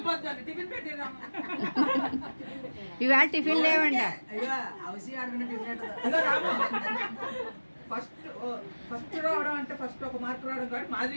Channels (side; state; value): both; inverted; correlation -1.00